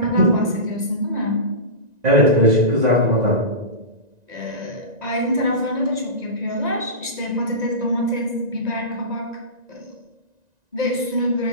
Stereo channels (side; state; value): left; late; 1.9 ms